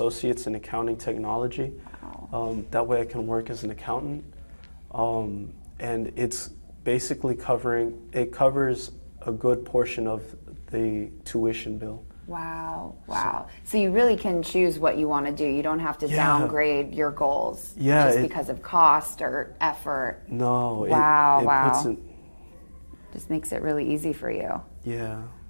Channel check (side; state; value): both; inverted; correlation -1.00